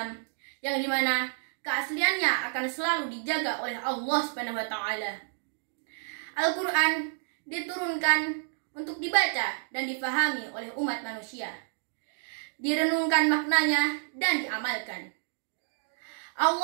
yang dimana keasliannya akan selalu dijaga oleh Allah Subhanahu wa taala. Al-Quran diturunkan untuk dibaca dan difahami oleh umat manusia, direnungkan maknanya dan diamalkan.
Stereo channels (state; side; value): silent; left; digital silence